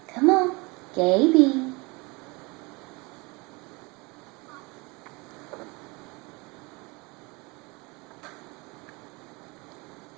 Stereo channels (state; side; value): quieter; left; 26.4 dB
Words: Come on, Gaby.